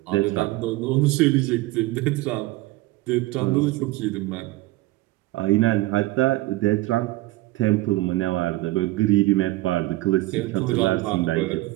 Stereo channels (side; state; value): left; quieter; 19.1 dB